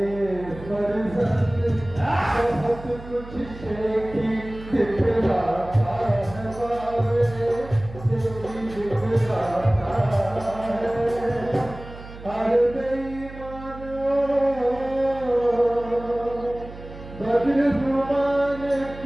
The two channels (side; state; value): right; noise; hum, 15 dB below the sound